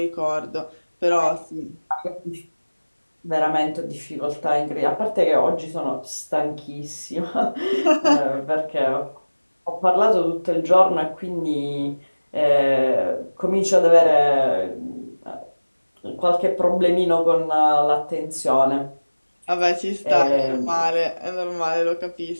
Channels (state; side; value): inverted; both; correlation -1.00